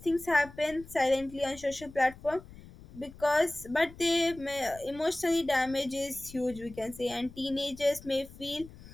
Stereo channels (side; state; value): left; noise; rumble, 18 dB below the sound